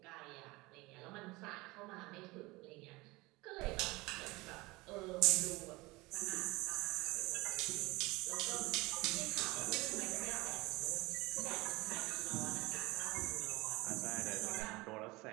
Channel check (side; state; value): left; quieter; 22.4 dB